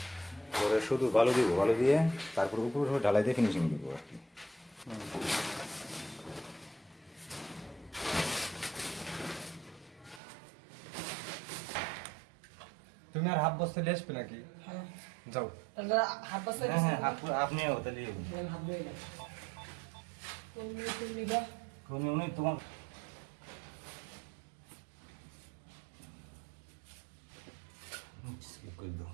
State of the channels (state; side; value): drops out; left; at 10.2 s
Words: পরে শুধু বালু দিব, বালু দিয়ে তারপর উপরে ঢালাই দিয়ে ফিনিশিং দিব আর কি। তুমি আর হাফ বস্তা নিয়ে আসবে নাকি? যাও। হাফ বস্তা হ্যাঁ হ্যাঁ, আপনি তাহলে উনি তোমার করে দাও।